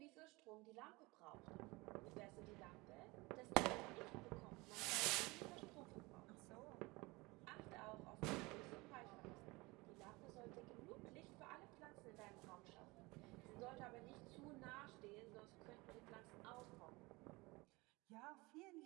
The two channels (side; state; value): left; quieter; 23.7 dB